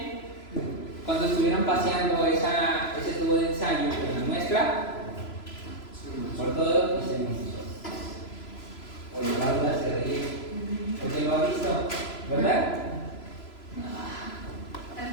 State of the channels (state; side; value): late; right; 3.0 ms